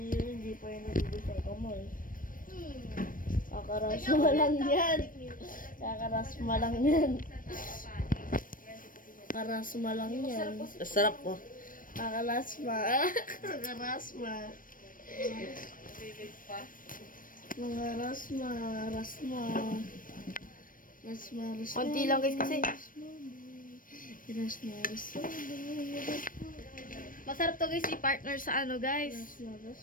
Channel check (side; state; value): right; late; 0.40 ms